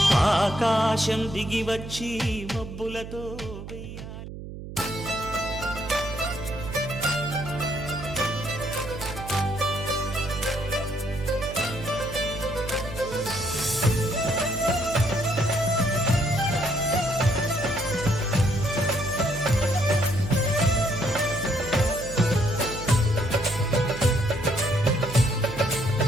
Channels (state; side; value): noise; right; hum, 11 dB below the sound